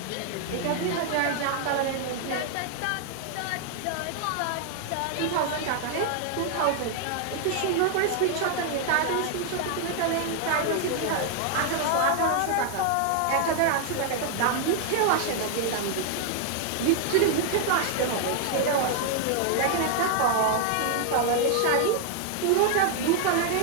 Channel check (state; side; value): different; both; correlation 0.00